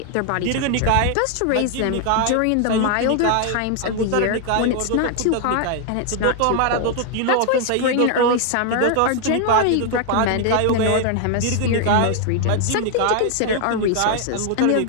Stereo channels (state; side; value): different; both; correlation 0.00